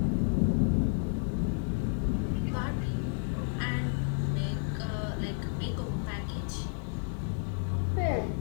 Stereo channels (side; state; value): right; silent; 57 dB below the other